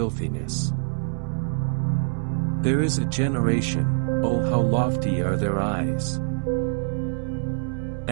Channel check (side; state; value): left; silent; digital silence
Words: There is a generation, oh how lofty are their eyes!